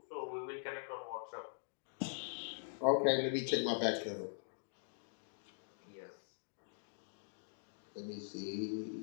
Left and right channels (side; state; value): right; silent; digital silence